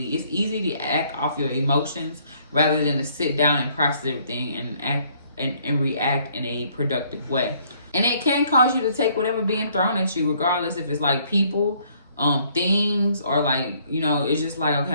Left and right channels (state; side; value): inverted; both; correlation -0.64